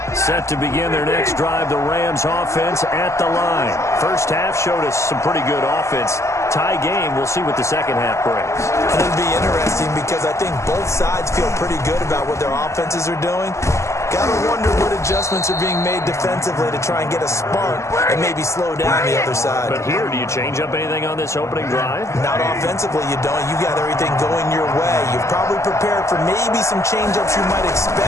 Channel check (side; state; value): right; late; 0.14 ms